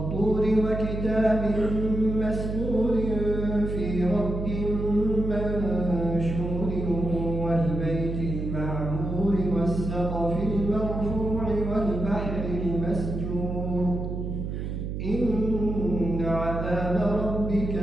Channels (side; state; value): right; noise; hum, 4 dB below the sound